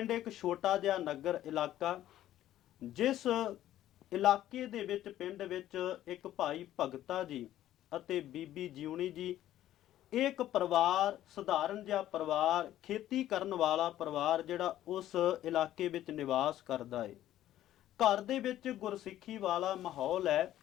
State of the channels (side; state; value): right; quieter; 13.0 dB